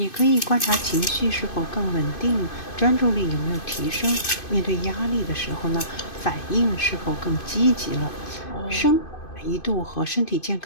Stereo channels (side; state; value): right; late; 2.5 ms